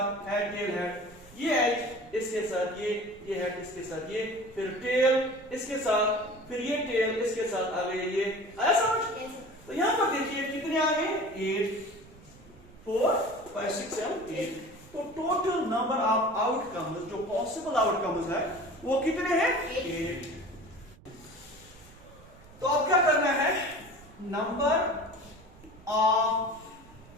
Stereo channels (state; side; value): noise; right; rumble, 23 dB below the sound